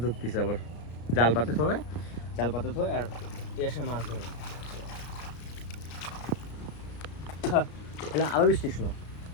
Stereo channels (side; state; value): right; late; 33 ms